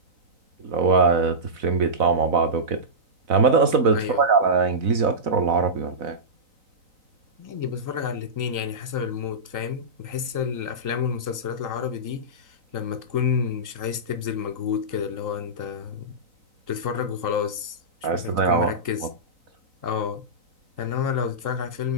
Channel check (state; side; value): late; left; 3.8 ms